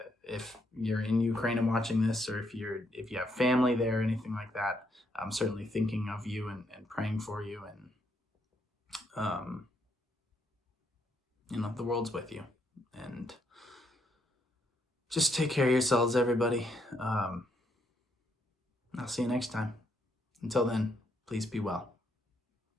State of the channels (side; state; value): both; normal; correlation 0.75